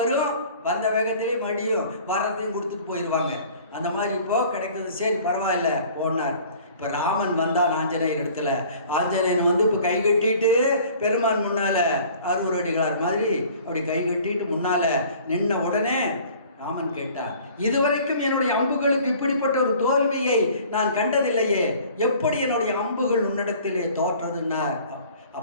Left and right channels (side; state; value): both; inverted; correlation -0.50